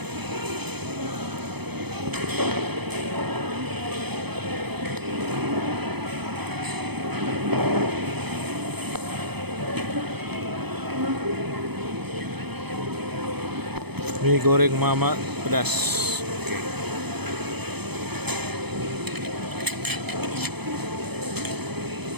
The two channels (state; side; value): late; left; 0.98 ms